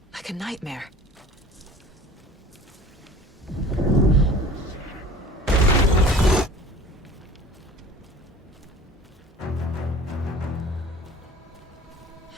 Like a nightmare.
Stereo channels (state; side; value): normal; both; correlation 0.45